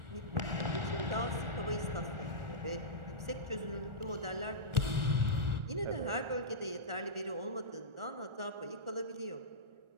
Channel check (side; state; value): left; late; 1.4 ms